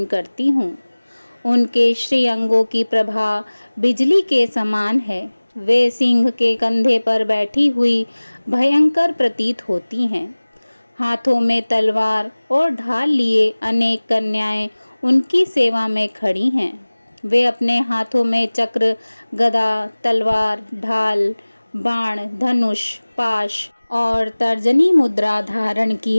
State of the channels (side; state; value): both; inverted; correlation -1.00